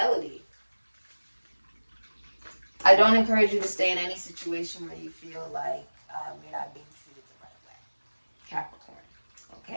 I don't encourage you to stay in any situation where you feel like you're not being treated the right way. Capricorn.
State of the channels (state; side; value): inverted; both; correlation -1.00